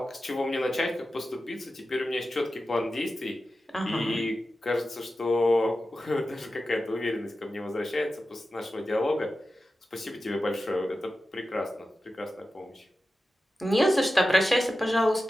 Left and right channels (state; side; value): normal; both; correlation 0.93